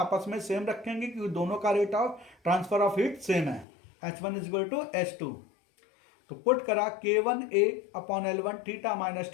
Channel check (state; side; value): drops out; right; at 3.7 s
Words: में सेम रखेंगे क्योंकि दोनों का rate of transfer of heat same है। H1 is equal to H2, तो पुट करा K1A upon L1 theta minus